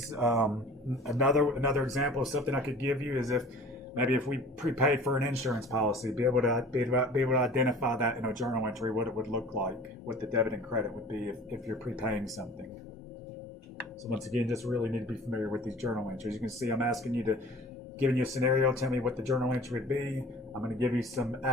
Another example of something I could give you is if we prepaid for an insurance policy, be able to identify that in a journal entry, what it would look like, what the debit and credit would be if you're prepaying something. So once again, just really need to be familiar with these journal entries. You can see I'm giving you a scenario, tell me what the journal entry would be. I'm going to give you some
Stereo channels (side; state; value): both; normal; correlation 0.44